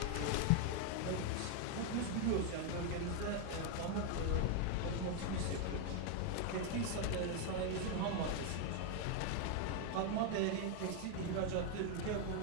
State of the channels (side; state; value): both; different; correlation 0.01